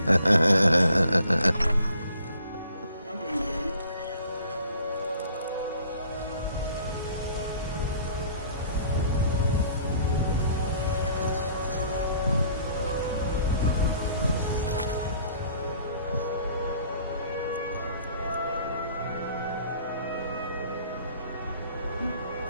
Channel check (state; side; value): inverted; both; correlation -0.56